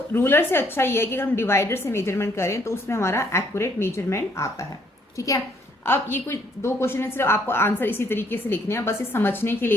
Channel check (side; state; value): both; normal; correlation 0.67